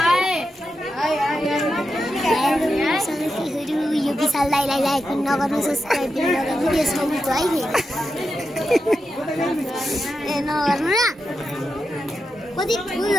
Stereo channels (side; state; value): both; normal; correlation 0.88